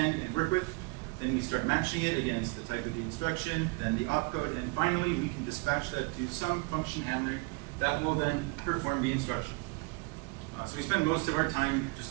and work with. Then we start matching it against the type of the instruction, then the opcode, and finally we can dispatch that to some function handler that will then perform the instruction. So we spend most of our time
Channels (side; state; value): left; quieter; 28.5 dB